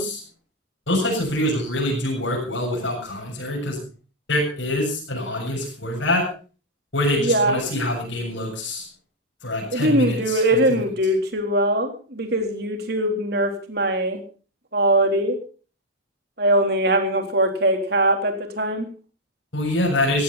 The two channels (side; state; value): both; normal; correlation -0.01